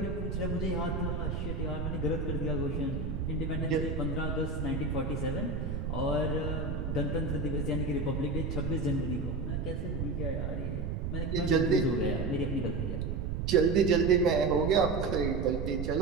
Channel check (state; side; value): noise; right; rumble, 2 dB below the sound